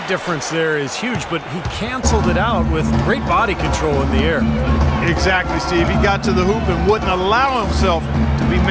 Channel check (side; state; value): both; identical; correlation 1.00